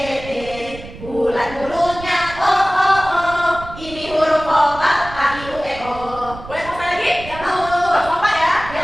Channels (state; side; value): noise; right; rumble, 14 dB below the sound